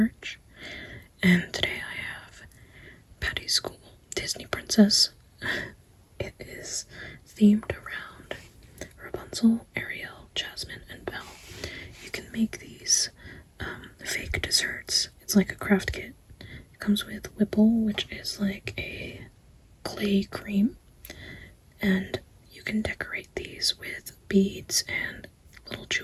and today I have Patty's School Disney Princess. It is themed around Rapunzel, Ariel, Jasmine, and Belle. You can make these fake desserts. It's like a craft kit. It comes with Whipple, which is like a clay cream, and you can decorate these with beads and little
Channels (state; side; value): identical; both; correlation 1.00